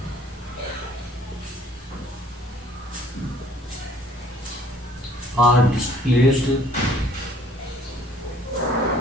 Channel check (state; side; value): normal; both; correlation 0.56